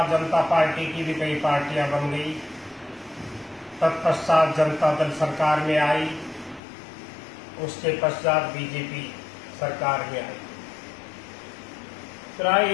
जनता पार्टी की भी कई पार्टियां बन गई। तत्पश्चात जनता दल सरकार में आई, उसके पश्चात बीजेपी सरकार में आई। प्राय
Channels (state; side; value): drops out; right; at 6.6 s